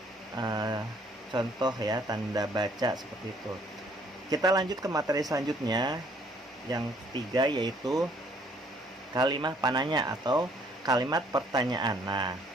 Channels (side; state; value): both; normal; correlation 0.62